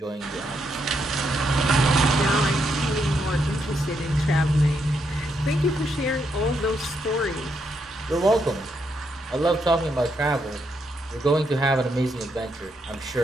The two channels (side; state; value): both; normal; correlation 0.79